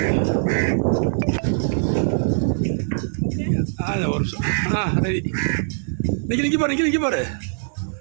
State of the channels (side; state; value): left; silent; digital silence